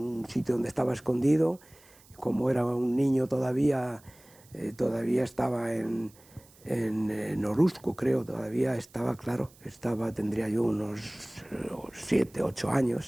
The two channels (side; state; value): right; noise; hiss, 26 dB below the sound